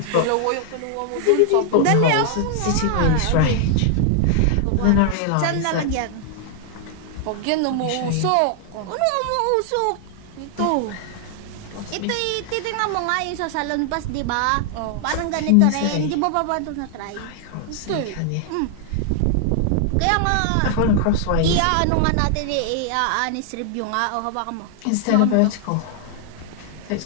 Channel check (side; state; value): both; different; correlation 0.00